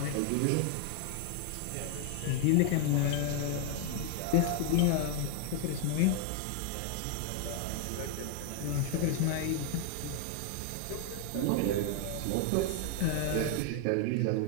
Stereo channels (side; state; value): both; different; correlation 0.01